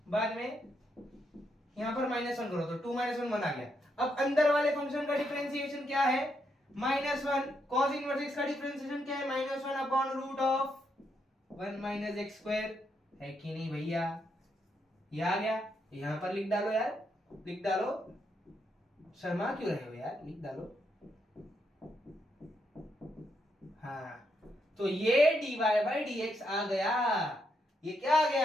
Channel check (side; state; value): both; normal; correlation 0.79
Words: बाद में यहां पर -1 करो तो 2 - 1 1 आ गया। अब अंदर वाले फंक्शन का डिफरेंशिएशन क्या है, -1। cos इनवर्स x का डिफरेंशिएशन क्या है, -1 upon root of 1 minus x square. है कि नहीं भैया? ये आ गया, यहां पर लिख डालो यार, लिख डालो। शर्मा क्यों रहे हो यार, लिख डालो। हाँ तो ये dy बाई dx आ गया। ये क्या आ